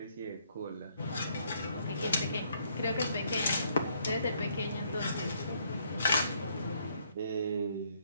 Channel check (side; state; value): both; inverted; correlation -0.69